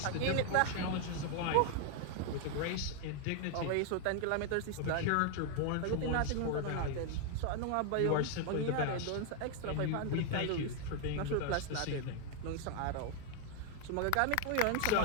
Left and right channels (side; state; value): both; different; correlation 0.00